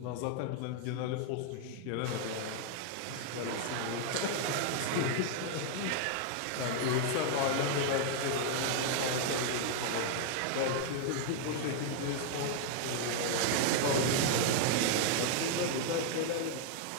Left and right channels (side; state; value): both; different; correlation 0.00